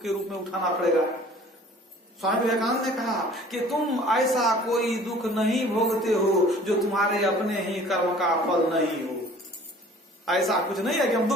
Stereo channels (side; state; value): both; normal; correlation 0.50